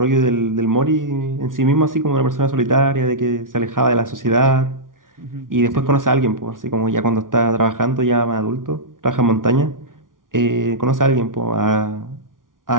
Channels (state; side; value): late; left; 0.89 ms